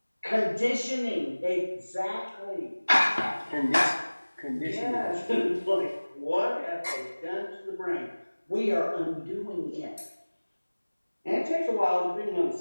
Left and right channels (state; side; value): inverted; both; correlation -1.00